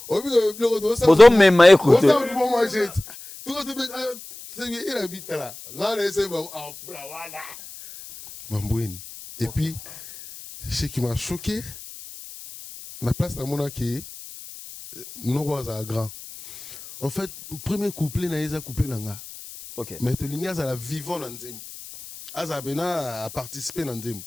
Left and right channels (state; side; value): noise; left; hiss, 15 dB below the sound